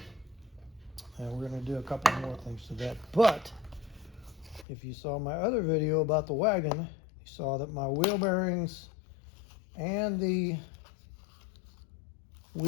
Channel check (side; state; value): right; drops out; at 4.7 s